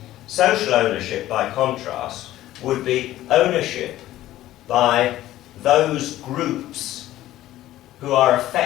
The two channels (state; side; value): quieter; right; 14.5 dB